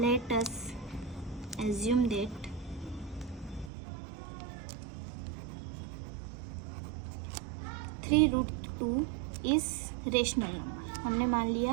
us assume that 3 root 2 is rational number. हमने मान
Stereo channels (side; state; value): left; drops out; at 3.7 s